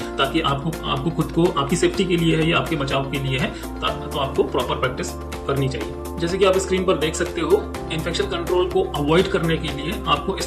ताकि आपको खुद को आपकी सेफ्टी के लिए है या आपके बचाव के लिए है, तो आपको प्रॉपर प्रैक्टिस करनी चाहिए। जैसे कि आप स्क्रीन पर देख सकते हो, इन्फेक्शन कंट्रोल को अवॉइड करने के लिए आपको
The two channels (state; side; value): identical; both; correlation 1.00